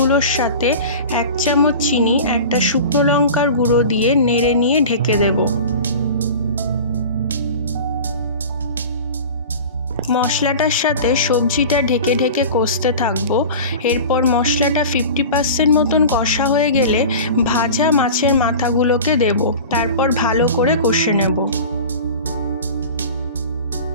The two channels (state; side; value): inverted; both; correlation -0.35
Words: সাথে 1 চামচ চিনি, একটা শুকনো লঙ্কার গুঁড়ো দিয়ে নেড়ে নিয়ে ঢেকে দেব। মশলাটার সাথে সবজিটা ঢেকে ঢেকে কষতে থাকবো। এরপর মশলাটা 50% মতন কষা হয়ে গেলে ভাজা মাছের মাথাগুলোকে দেব, তারপর ভালো করে কষে নেব।